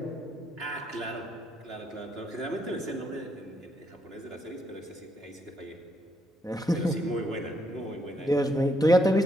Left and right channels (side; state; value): both; normal; correlation 0.75